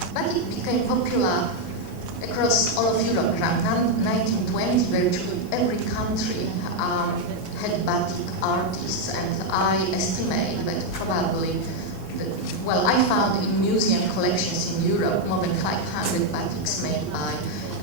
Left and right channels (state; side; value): late; right; 29 ms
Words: Batik became popular across all of Europe around 1920. Virtually every country had batik artists, and I estimate that probably, I found in museum collections in Europe more than 500 batiks made by